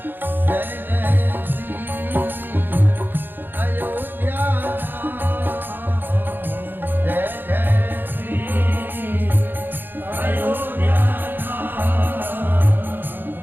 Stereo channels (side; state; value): left; late; 0.095 ms